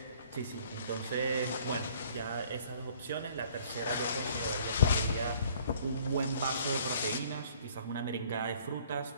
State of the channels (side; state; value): both; inverted; correlation -0.57